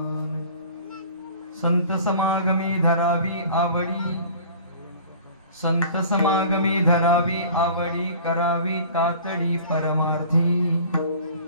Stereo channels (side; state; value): both; inverted; correlation -0.45